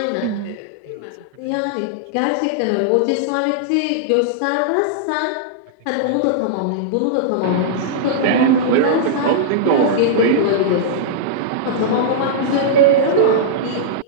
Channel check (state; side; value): different; both; correlation -0.02